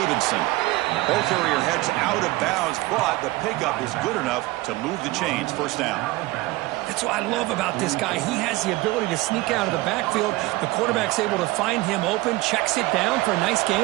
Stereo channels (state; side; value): quieter; left; 20.0 dB